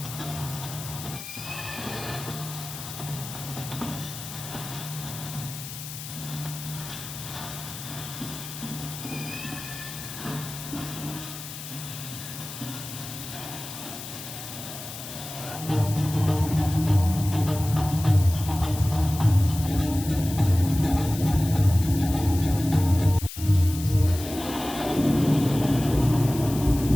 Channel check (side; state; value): left; noise; hiss, 11 dB below the sound